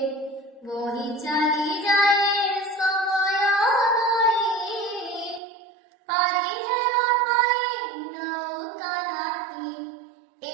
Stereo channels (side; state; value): left; drops out; at 5.4 s